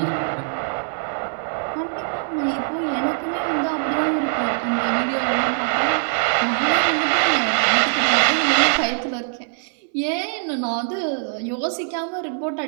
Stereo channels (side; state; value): left; silent; 60 dB below the other